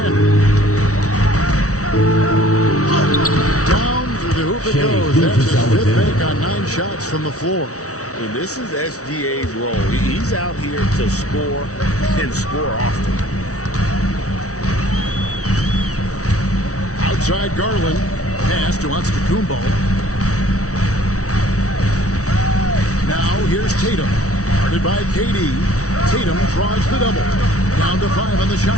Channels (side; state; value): right; late; 0.65 ms